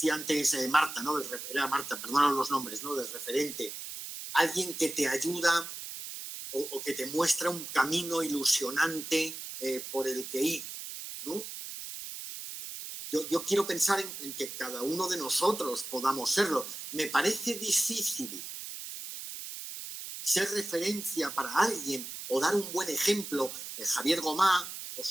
antes Marta, ¿no? Era Marta, perdónanos los nombres, ¿no? Del referente. Alguien que te ayuda o que te muestra un camino ilusionante por el que ir, ¿no? Yo quiero pensar en que cada uno de nosotros podamos serlo. Me parece difícil ser referencia para alguien o dar un buen ejemplo. Javier Gomá, os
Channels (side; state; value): right; noise; hiss, 9 dB below the sound